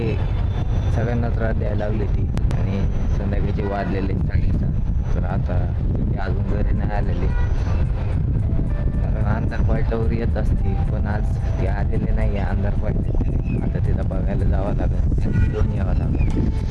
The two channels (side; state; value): both; identical; correlation 1.00